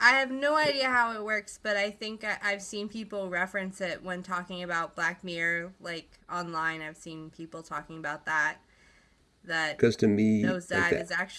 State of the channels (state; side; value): identical; both; correlation 1.00